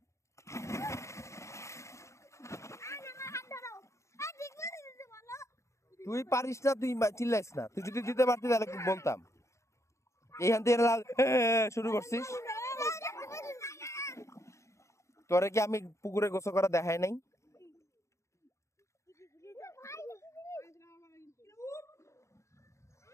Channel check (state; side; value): late; right; 0.14 ms